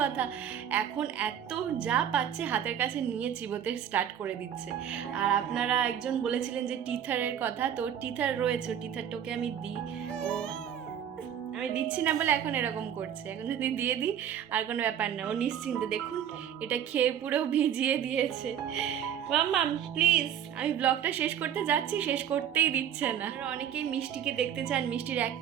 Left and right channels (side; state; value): left; quieter; 9.4 dB